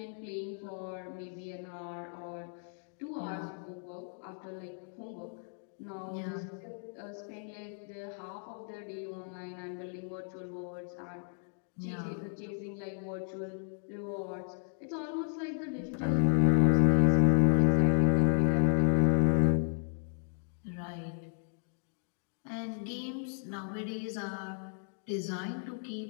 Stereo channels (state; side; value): silent; right; 55 dB below the other